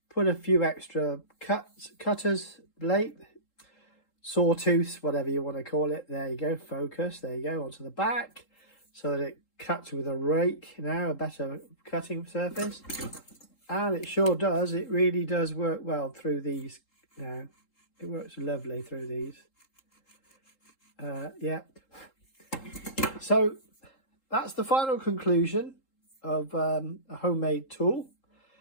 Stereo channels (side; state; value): right; late; 3.8 ms